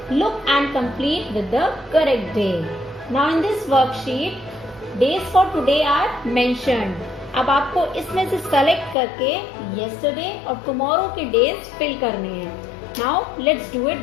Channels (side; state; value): right; drops out; at 9.0 s